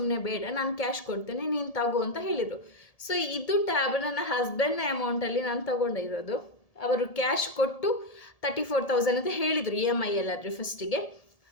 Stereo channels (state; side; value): late; right; 1.7 ms